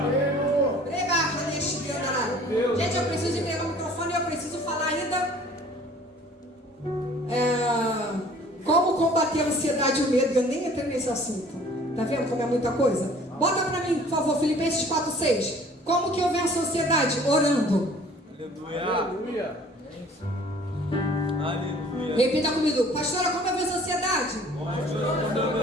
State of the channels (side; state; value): both; normal; correlation 0.52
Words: Gente, eu preciso entregar o microfone e eu preciso falar ainda como combater a ansiedade e o medo. Eu nem entrei nesse assunto. Tá vendo como é muita coisa? Bota pra mim, por favor, Filipenses 4:6. Como que eu venço a ansiedade? Orando. Aleluia. Aleluia. Repita comigo. Pastora, como eu venço a ansiedade?